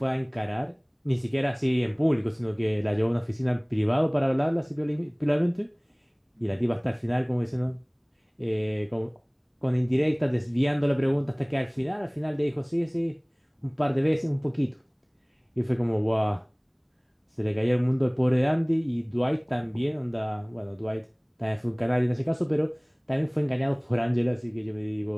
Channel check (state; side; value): identical; both; correlation 1.00